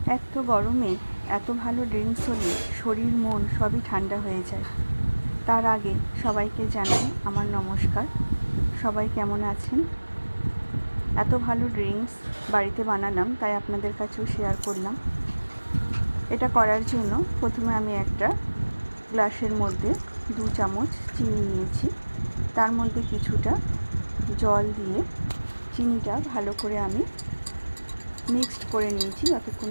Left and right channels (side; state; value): both; inverted; correlation -1.00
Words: এক তো গরমে এত ভালো ড্রিঙ্কস হলে শরীর মন সবই ঠান্ডা হয়ে যায়। তার আগে সবাইকে জানাই আমার নমস্কার। সবাই কেমন আছেন? এত ভালো ড্রিঙ্কস বাড়িতে বানালাম, তাই আপনাদের কাছেও শেয়ার করলাম। এটা করার জন্য প্রথমে আমি একটা গ্লাসের মধ্যে 2 চামচ চিনি নিয়েছি। তার মধ্যে কিছুটা জল দিয়ে চিনিটা ভালো করে আমি মিক্সড করে নিয়েছি, যতক্ষণ